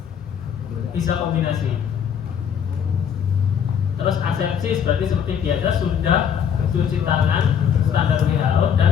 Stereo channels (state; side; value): quieter; right; 8.0 dB